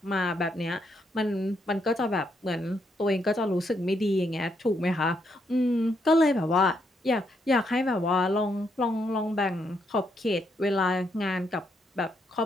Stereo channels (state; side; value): normal; both; correlation 0.77